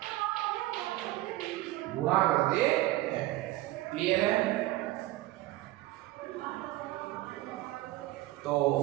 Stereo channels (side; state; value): left; quieter; 17.4 dB